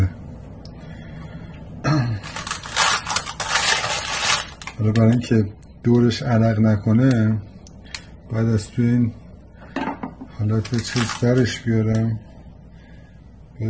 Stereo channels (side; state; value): both; identical; correlation 1.00